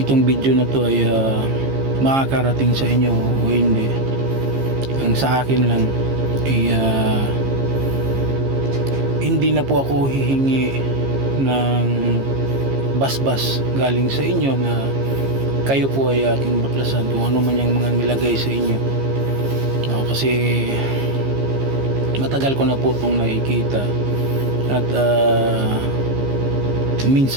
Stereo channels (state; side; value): late; left; 15 ms